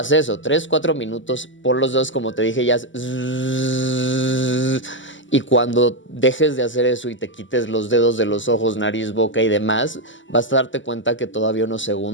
eso, 3-4 minutos, por los dedos, como te dije, ya. Y cuando dejes de hacer eso y te quites los dedos de los ojos, nariz, boca y demás, vas a darte cuenta que todavía unos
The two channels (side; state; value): right; late; 0.55 ms